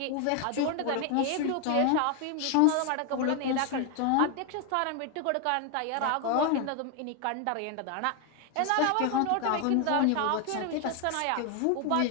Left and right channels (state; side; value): different; both; correlation 0.01